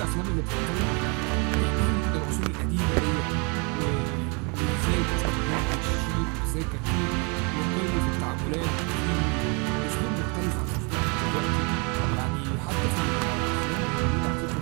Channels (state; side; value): quieter; left; 32.6 dB